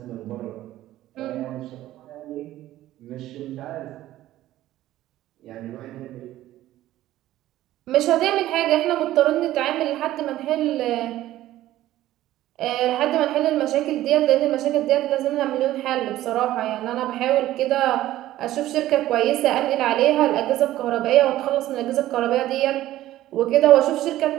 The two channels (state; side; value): quieter; left; 14.6 dB